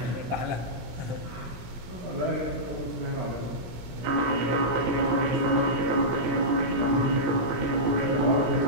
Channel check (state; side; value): late; left; 17 ms